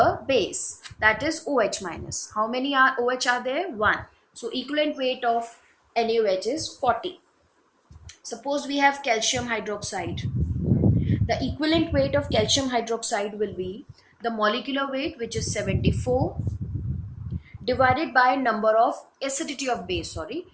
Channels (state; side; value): identical; both; correlation 1.00